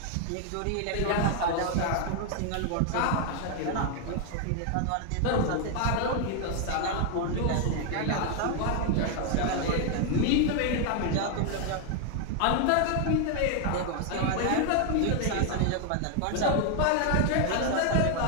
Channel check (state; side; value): different; both; correlation 0.00